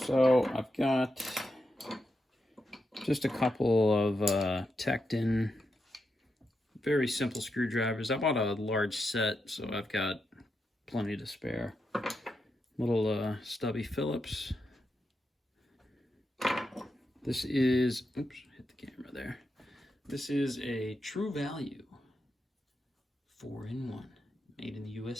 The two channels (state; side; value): normal; both; correlation 0.86